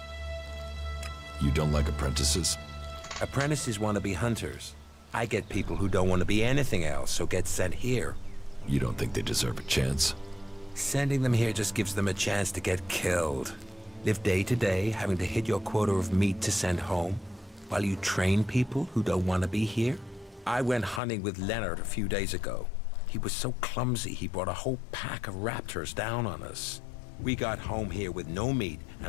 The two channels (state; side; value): drops out; right; at 21.0 s